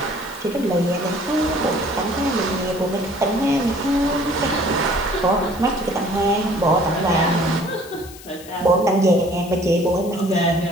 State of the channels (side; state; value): left; noise; hiss, 18 dB below the sound